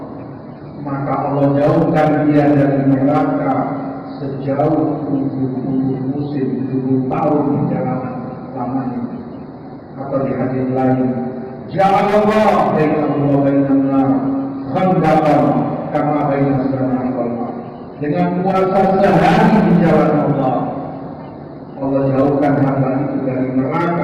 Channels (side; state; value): both; identical; correlation 1.00